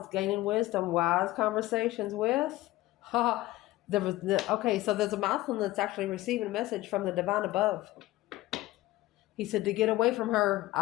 gaining wisdom, wise conversations with. Okay, so there's a masculine that's actually receiving a message from the divine above. He said, to get away from her,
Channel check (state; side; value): quieter; right; 17.4 dB